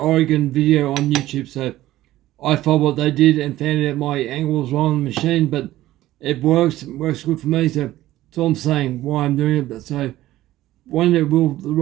video on YouTube. So I followed what they did and found out my angle was wrong on the machine, but it works good for me. So that's all I'm saying, why I'm doing it. But so one day will the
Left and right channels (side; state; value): left; quieter; 15.3 dB